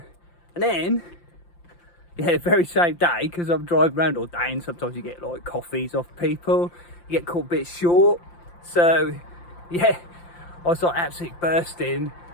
And then, the very same day, because I'm driving around all day, and sometimes you get like coffees off people, you get caught a bit short. So I was like absolutely bursting,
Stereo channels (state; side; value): late; right; 5.8 ms